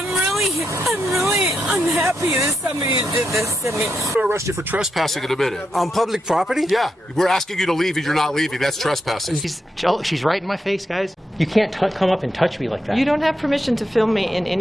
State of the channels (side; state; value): both; normal; correlation 0.83